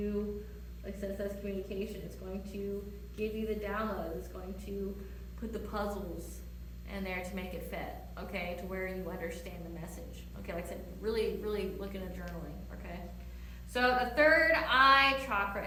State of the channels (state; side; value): identical; both; correlation 1.00